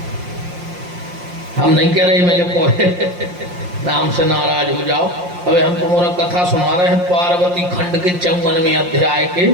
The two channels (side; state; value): left; late; 5.6 ms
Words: हम नहीं कह रहे मेरे कोहे नाम से नाराज हो जाओ। अबे हम तुम्हारा कथा सुना रहे हैं पार्वती खंड के 54वें अध्याय